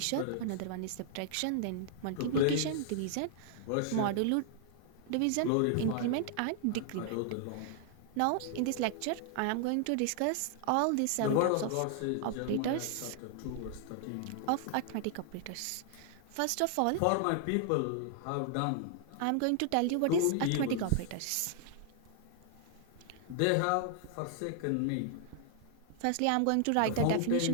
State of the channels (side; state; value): both; different; correlation 0.00